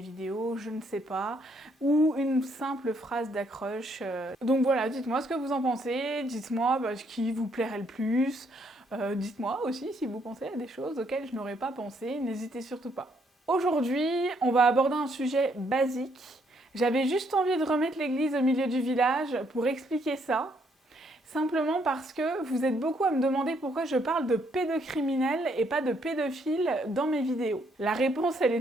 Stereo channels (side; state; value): both; normal; correlation 0.71